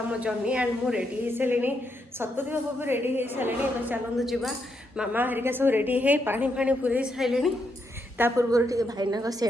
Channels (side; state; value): both; normal; correlation 0.80